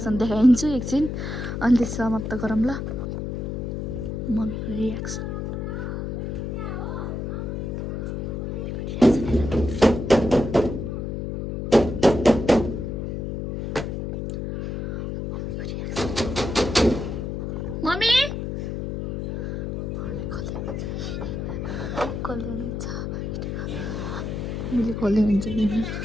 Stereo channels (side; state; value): left; noise; hum, 4 dB below the sound